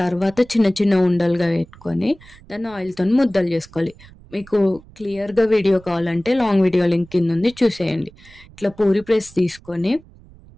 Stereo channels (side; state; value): right; noise; rumble, 23 dB below the sound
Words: చిన్న చిన్న ఉండలుగా పెట్టుకొని దాన్ని ఆయిల్తో ముద్దలు చేసుకోవాలి. మీకు క్లియర్గా వీడియో కావాలంటే లాంగ్ వీడియో లింక్ కింద ఉంది, చూసేయండి. ఇట్లా పూరి ప్రెస్ తీసుకొని